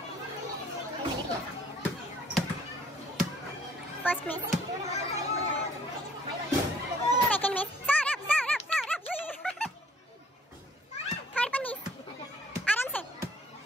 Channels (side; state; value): both; normal; correlation 0.60